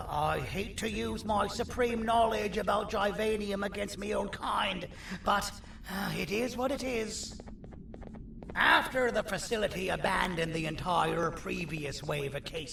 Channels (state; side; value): identical; both; correlation 1.00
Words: I hate to use my supreme knowledge about 𝕻𝖊𝖓𝖙 against my own kind, but it is what it is. After the facility abandoned the entire previous wave of